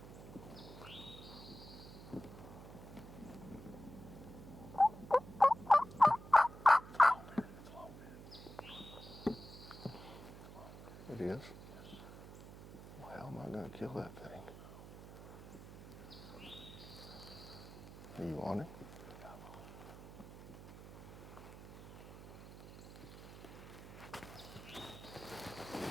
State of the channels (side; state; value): right; noise; hum, 14 dB below the sound